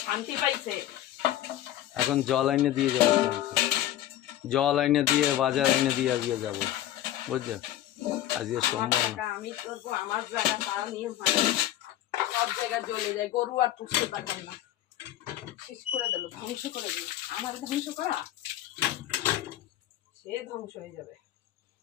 শান্তি পাইছে। এখন জল এনে দিয়ে যাবো তোমাকে, জল এনে দিয়ে বাজার এনে দিয়ে আজকে যাবো, বুঝছো? আজকে সোমবার না। আমি করবো আমার জায়গা, তাও নিয়ে সব জায়গায় জ্বলে যায়, গরু আর পুষতে পারবেন না। শেষ করে দিল, ধ্বংস করে দিল। আমার ধ্বংস করা, সে ধ্বংস হয়ে যাবে।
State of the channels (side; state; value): right; quieter; 13.1 dB